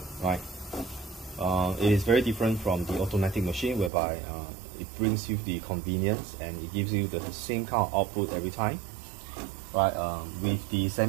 right? It is very different from the automatic machine, whereby it brings you the convenience and it gives you the same kind of output every time. Right, with the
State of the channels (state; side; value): drops out; left; at 3.9 s